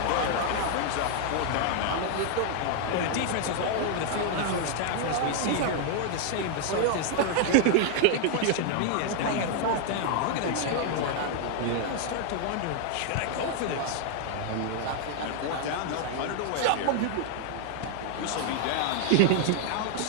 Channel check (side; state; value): both; different; correlation 0.00